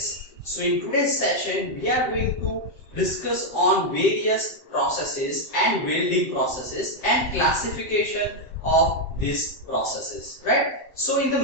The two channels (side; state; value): right; late; 7.8 ms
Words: So in today's session we are going to discuss on various processes and welding processes and classification of these processes, right? So in the